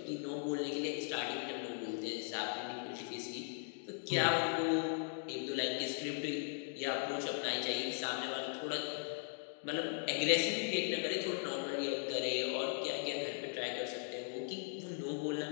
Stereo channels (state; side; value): silent; right; 52 dB below the other